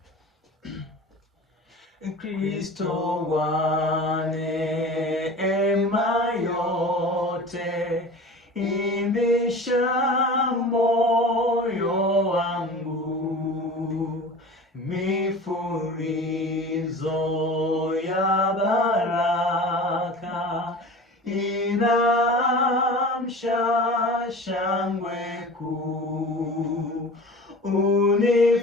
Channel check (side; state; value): both; normal; correlation 0.37